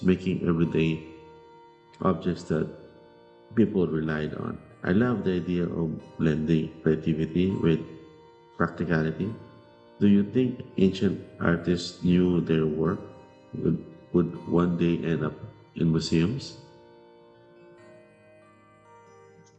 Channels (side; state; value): both; identical; correlation 1.00